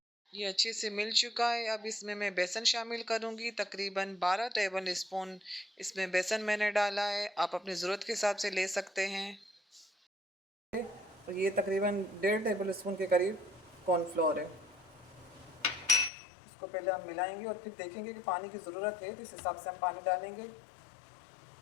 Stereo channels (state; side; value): drops out; right; at 16.1 s